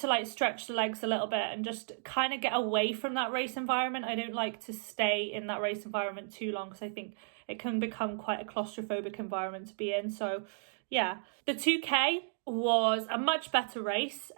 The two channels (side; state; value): left; silent; digital silence